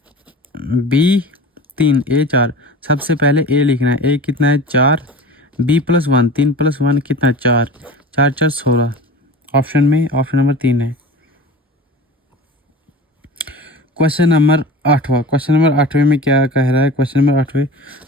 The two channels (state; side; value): normal; both; correlation 0.36